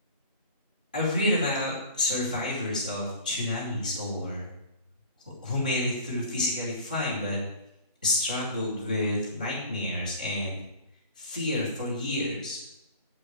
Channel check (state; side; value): inverted; both; correlation -0.40